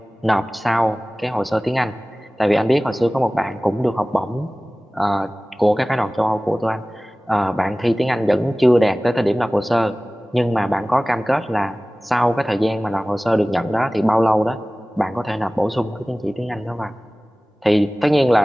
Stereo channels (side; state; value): both; normal; correlation 0.98